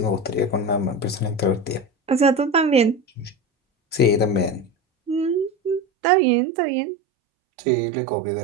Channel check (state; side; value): drops out; left; at 5.8 s